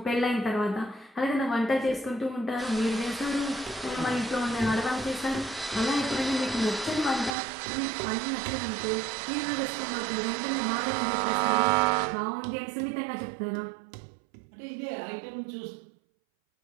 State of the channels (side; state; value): left; drops out; at 7.3 s